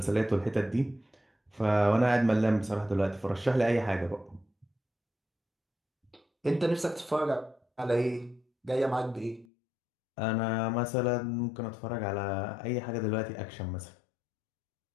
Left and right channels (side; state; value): right; drops out; at 9.5 s